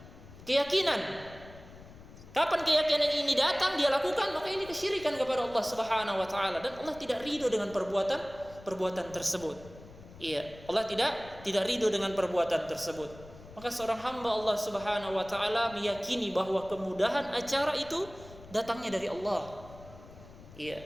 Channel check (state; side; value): noise; left; rumble, 19 dB below the sound